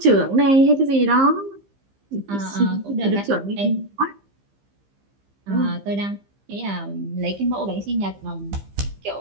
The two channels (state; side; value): late; left; 15 ms